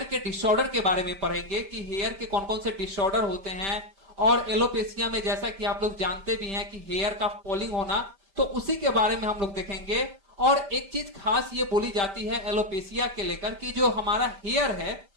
के डिसऑर्डर के बारे में पढ़ेंगे कि हेयर के कौन कौन से डिसऑर्डर होते हैं। और एलोपेशिया में जैसा कि आप लोग जानते भी हैं कि हेयर का फॉलिंग होना, तो उसी के बारे में हम लोग देखेंगे। और एक चीज खास ये बोली जाती है एलोपेशिया के लेकर कि जो हमारा हेयर है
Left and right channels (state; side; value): late; left; 5.1 ms